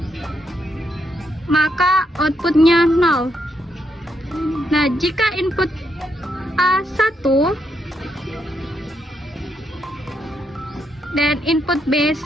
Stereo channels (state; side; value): normal; both; correlation 0.79